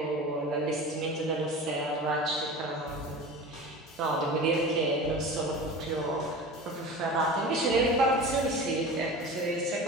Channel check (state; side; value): normal; both; correlation 0.33